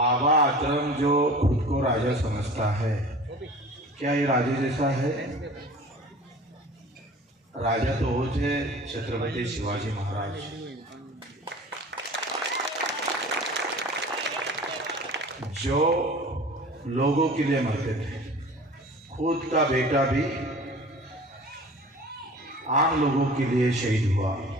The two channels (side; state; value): both; normal; correlation 0.41